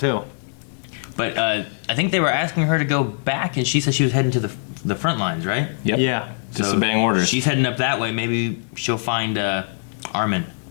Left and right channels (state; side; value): silent; right; 64 dB below the other